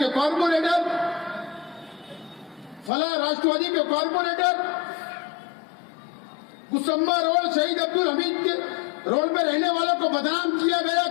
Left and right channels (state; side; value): drops out; right; at 2.9 s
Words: कॉर्पोरेटर, फला राष्ट्रवादी के कॉर्पोरेटर, कुसुम्बा रोड शहीद अब्दुल हमीद के रोड में रहने वालों को बदनाम किया गया